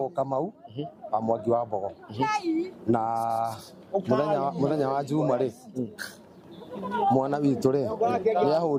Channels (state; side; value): identical; both; correlation 1.00